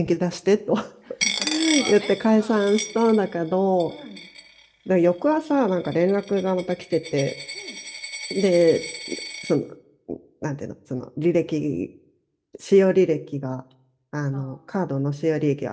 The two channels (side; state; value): both; identical; correlation 1.00